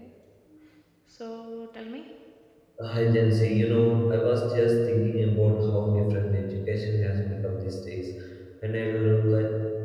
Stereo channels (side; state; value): both; identical; correlation 1.00